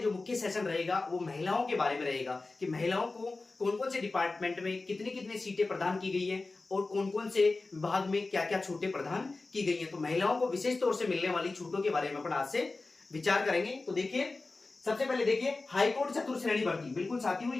मुख्य सेशन रहेगा वो महिलाओं के बारे में रहेगा कि महिलाओं को कौन कौन से डिपार्टमेंट में कितनी कितनी सीटें प्रदान की गई हैं और कौन कौन से विभाग में क्या क्या छूटें प्रदान की गई हैं। तो महिलाओं को विशेष तौर से मिलने वाली छूटों के बारे में अपन आज से विचार करेंगे। तो देखिए, सबसे पहले देखिए हाईकोर्ट चतुर्थ श्रेणी भर्ती। बिल्कुल साथियों,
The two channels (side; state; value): right; quieter; 3.5 dB